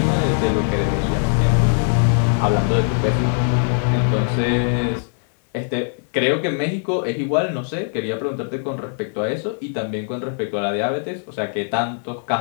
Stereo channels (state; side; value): silent; right; 65 dB below the other